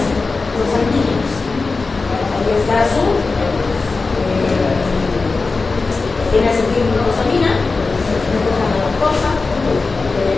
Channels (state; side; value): quieter; right; 4.0 dB